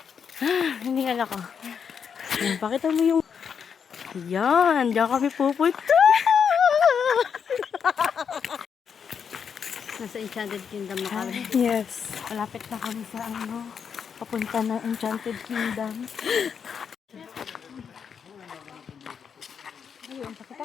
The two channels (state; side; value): quieter; right; 6.9 dB